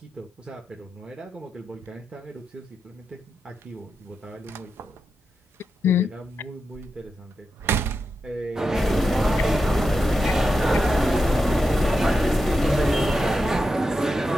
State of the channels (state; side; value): normal; both; correlation 0.88